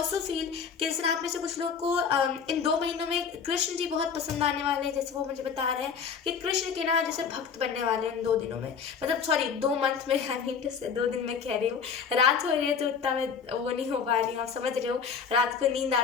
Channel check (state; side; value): quieter; right; 6.4 dB